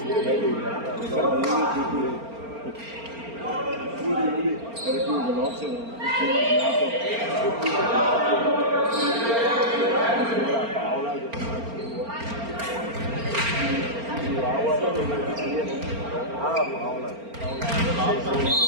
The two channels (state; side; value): late; left; 4.4 ms